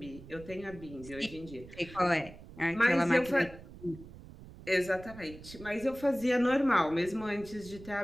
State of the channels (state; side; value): noise; right; rumble, 17 dB below the sound